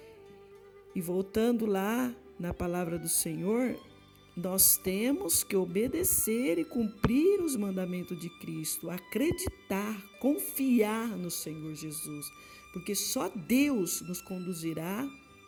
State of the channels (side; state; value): both; identical; correlation 1.00